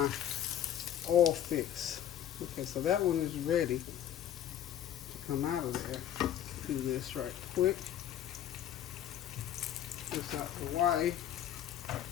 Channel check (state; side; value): quieter; right; 10.7 dB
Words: oil fix. Okay, so that one is ready to come out of there. Do this right quick. This out the way.